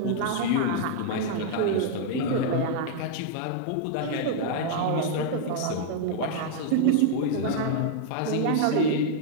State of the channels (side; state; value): both; different; correlation -0.01